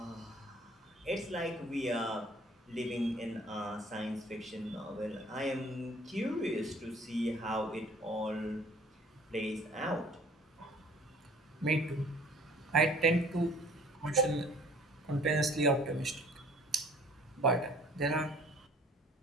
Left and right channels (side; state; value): both; normal; correlation 0.52